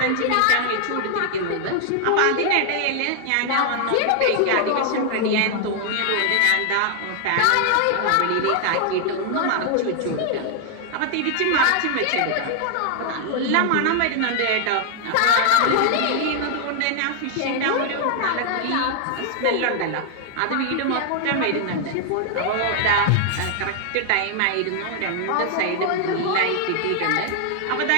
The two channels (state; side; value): different; both; correlation 0.00